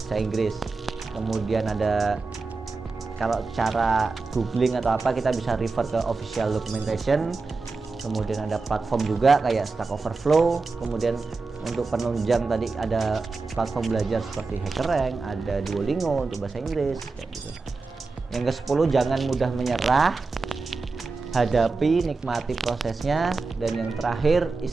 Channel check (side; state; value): left; quieter; 4.0 dB